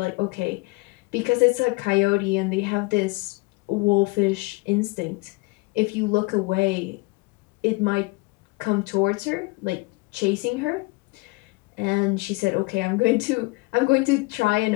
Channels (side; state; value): right; quieter; 25.3 dB